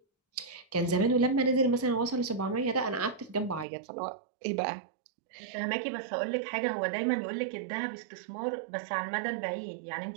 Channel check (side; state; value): left; drops out; at 3.7 s